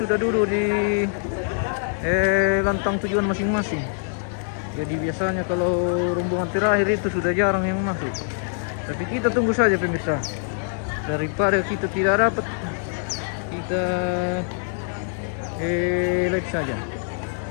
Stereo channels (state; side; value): silent; right; digital silence